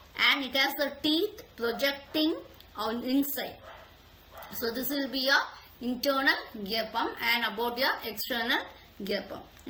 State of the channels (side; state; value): both; identical; correlation 1.00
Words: and it has the teeth projecting on inside. So this will be your internal gear pump, and about your external gear pump.